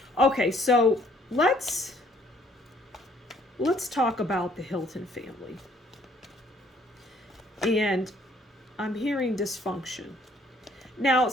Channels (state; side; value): normal; both; correlation 0.62